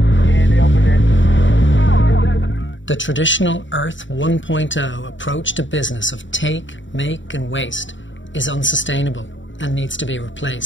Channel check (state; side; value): late; right; 0.55 ms